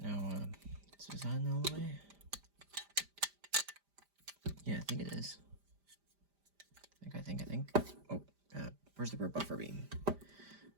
Now, is this on all the way? Yeah, I think it is. I think. Oh, where's the rear buffer beam?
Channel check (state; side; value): late; left; 5.0 ms